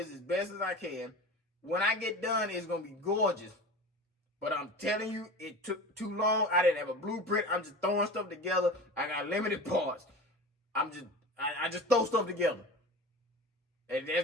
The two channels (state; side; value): normal; both; correlation 0.34